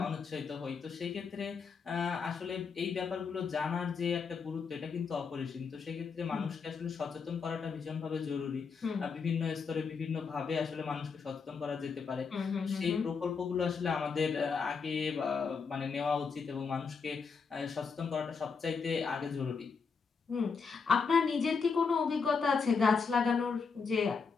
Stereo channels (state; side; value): quieter; right; 5.4 dB